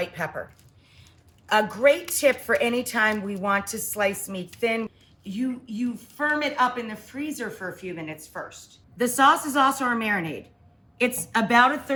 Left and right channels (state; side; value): identical; both; correlation 1.00